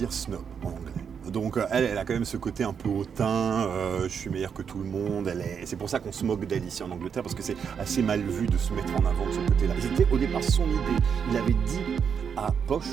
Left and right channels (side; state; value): left; quieter; 7.0 dB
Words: snob en anglais. Donc elle a quand même ce côté un peu hautain, je suis meilleur que tout le monde. C'est pour ça qu'on se moque d'elle ici en Angleterre, parce que c'est assez mal vu de se mettre en avant de ce côté-là. C'était au départ son idée. Il avait dit à